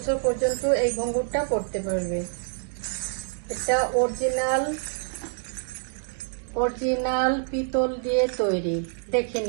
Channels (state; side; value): silent; left; 61 dB below the other